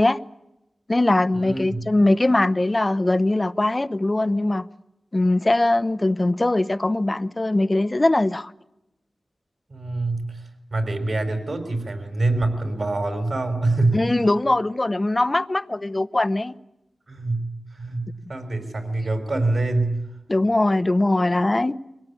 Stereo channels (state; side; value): normal; both; correlation 0.97